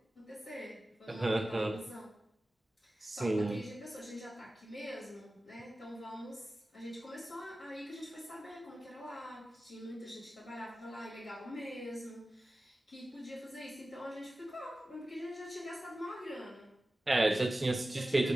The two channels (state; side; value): normal; both; correlation 0.95